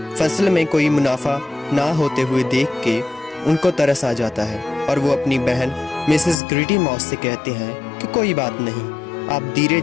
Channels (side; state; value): right; drops out; at 6.4 s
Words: फसल में कोई मुनाफा ना होते हुए देख के उनको तरस आ जाता है और वो अपनी बहन मिसेस ग्रीटी मॉस से कहते हैं कि कोई बात नहीं, आप धीरे